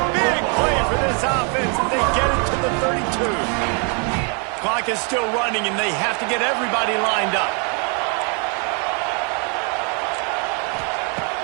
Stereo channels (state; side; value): quieter; left; 36.9 dB